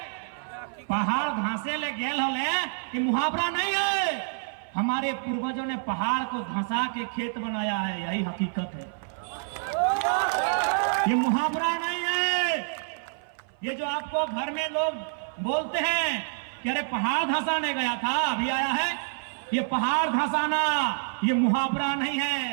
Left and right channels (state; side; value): silent; left; 57 dB below the other